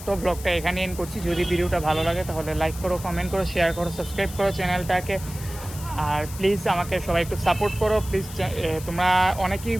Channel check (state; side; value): noise; left; hiss, 14 dB below the sound